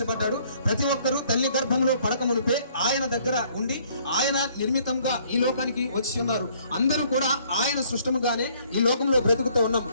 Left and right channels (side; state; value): both; inverted; correlation -0.62